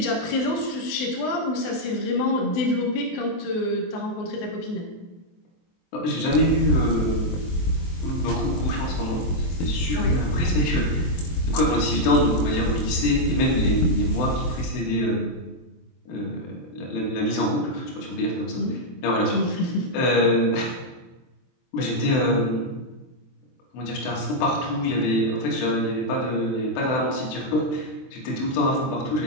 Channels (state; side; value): late; right; 23 ms